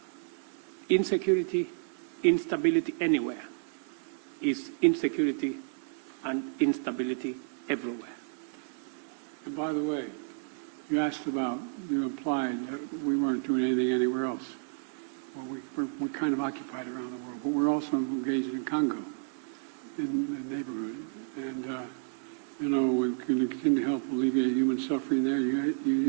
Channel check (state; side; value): silent; left; 57 dB below the other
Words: insecurity, instability anywhere is insecurity and instability everywhere. And by the way, you asked about, you implied that we weren't doing anything anywhere else. Well, we're kind of occupied around the world, but we're also engaged in Congo, in the neighborhood. And, you know, we can continue to help alleviate human suffering there. The